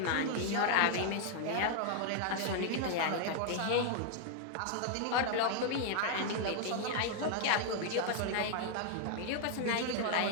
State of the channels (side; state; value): both; different; correlation 0.00